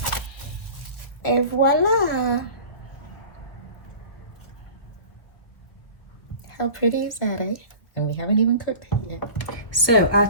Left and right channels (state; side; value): late; right; 1.2 ms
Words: Et voila! How pretty is that, eh? And we haven't even cooked it yet. So our